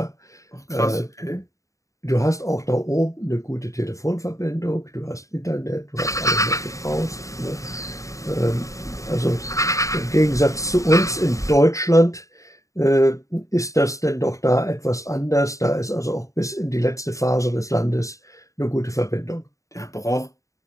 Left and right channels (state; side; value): late; right; 0.16 ms